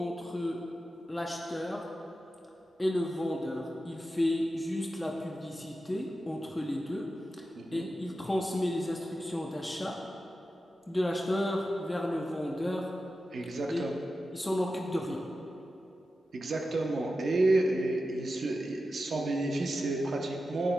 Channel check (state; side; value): normal; both; correlation 0.92